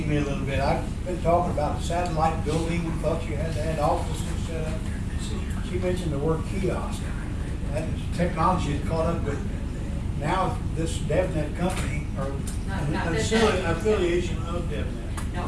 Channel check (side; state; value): both; identical; correlation 1.00